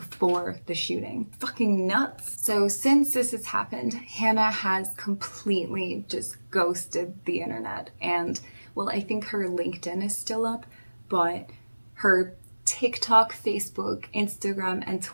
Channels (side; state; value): both; inverted; correlation -1.00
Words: the shooting. Fucking nuts. So since this has happened, Hannah has completely just ghosted the internet. And, well, I think her LinkedIn is still up, but her TikTok, Facebook, Instagram, and